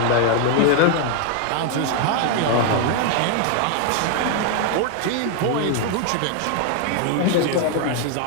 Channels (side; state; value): both; different; correlation 0.00